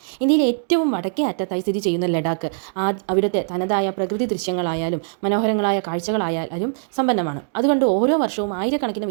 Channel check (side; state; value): left; silent; digital silence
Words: ഇന്ത്യയിലെ ഏറ്റവും വടക്കേ അറ്റത്തായി സ്ഥിതി ചെയ്യുന്ന ലഡാക്ക് അവിടുത്തെ തനതായ പ്രകൃതി ദൃശ്യങ്ങളായാലും മനോഹരങ്ങളായ കാഴ്ചകളായാലും സമ്പന്നമാണ്. അതുകൊണ്ട് ഓരോ വർഷവും ആയിരക്കണക്കിന്